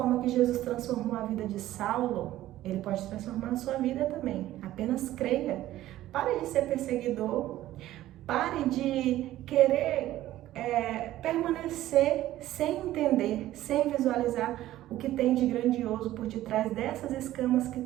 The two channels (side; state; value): left; quieter; 14.5 dB